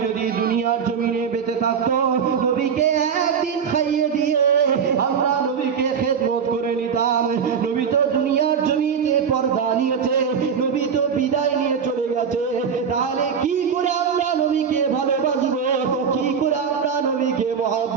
যদি দুনিয়ার জমিনে বেঁচে থাকতো, নবীকে একদিন খাইয়ে দিয়ে আমরা নবীকে খেদমত করে নিতাম। নবী তো দুনিয়ার জমিতে পর্দা নিয়েছে, নবী তো বিদায় নিয়ে চলে গেছে। তাহলে কি করে আমরা নবীকে ভালোবাসবো? কি করে আমরা নবীকে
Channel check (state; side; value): quieter; left; 6.8 dB